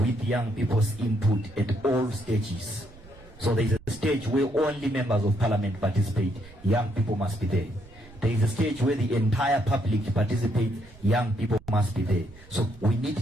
young people's input at all stages. So there is a stage where only members of parliament participate. Young people must be there. There is a stage where the entire public participates. Young people must be there. So we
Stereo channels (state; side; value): noise; right; rumble, 21 dB below the sound